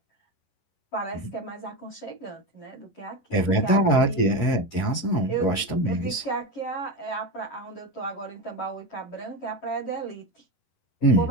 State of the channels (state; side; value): late; right; 11 ms